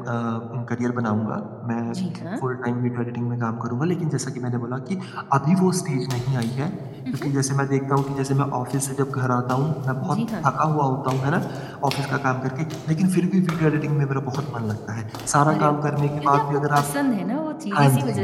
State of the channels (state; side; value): identical; both; correlation 1.00